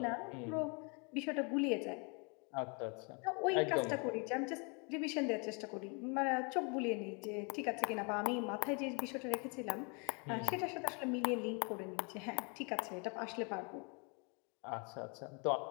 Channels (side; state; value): right; quieter; 34.1 dB